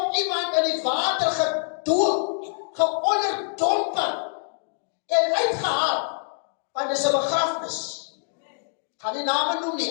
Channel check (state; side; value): silent; right; digital silence